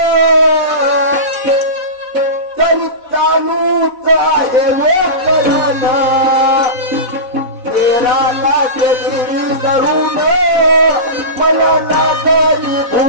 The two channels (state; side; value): late; left; 4.0 ms